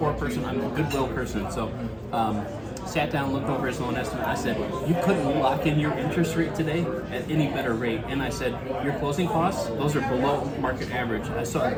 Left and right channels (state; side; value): identical; both; correlation 1.00